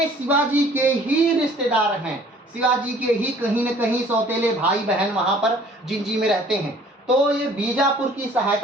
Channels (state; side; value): normal; both; correlation 0.54